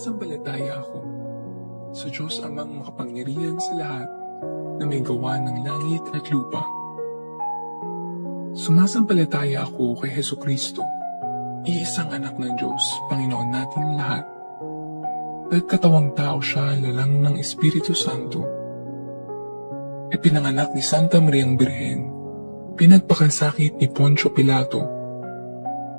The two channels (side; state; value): both; inverted; correlation -1.00